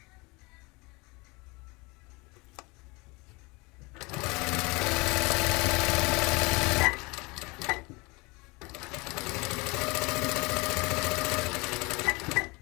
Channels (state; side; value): quieter; right; 25.8 dB